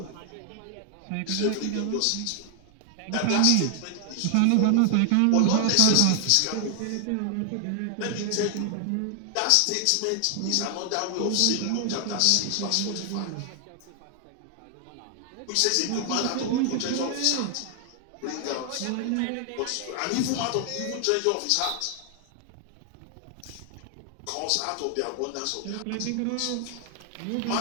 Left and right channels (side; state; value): both; different; correlation 0.00